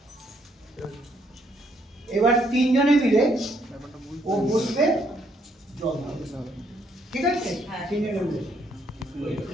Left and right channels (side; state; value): both; normal; correlation 0.71